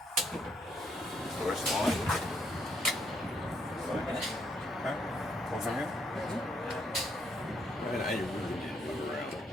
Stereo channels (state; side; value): normal; both; correlation 0.72